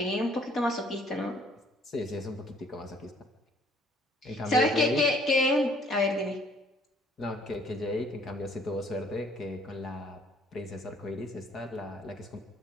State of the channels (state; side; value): normal; both; correlation 0.60